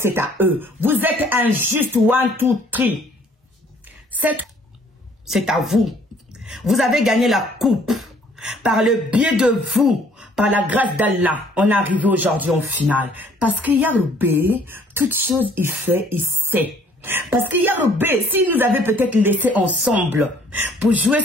à eux. Vous êtes injustes, 1, 2, 3. C'est à vous. Vous avez gagné la coupe. Par le biais de vous, par la grâce d'Allah, on est arrivé aujourd'hui en finale. Parce que Yarobé, toutes choses il fait, il sait. Parce que Yarobé, s'il nous avait peut-être laissé ensemble pour jouer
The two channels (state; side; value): normal; both; correlation 0.59